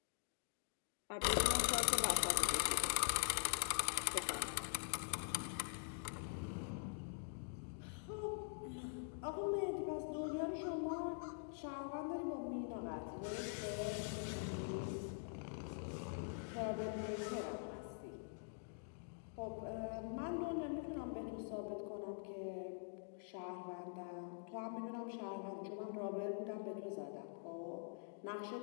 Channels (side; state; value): right; silent; digital silence